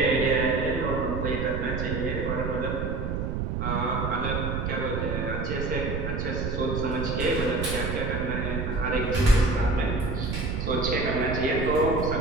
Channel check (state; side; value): noise; right; rumble, 2 dB below the sound